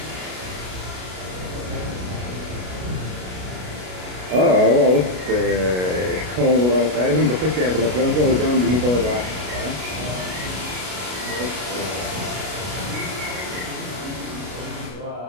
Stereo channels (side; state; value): left; late; 33 ms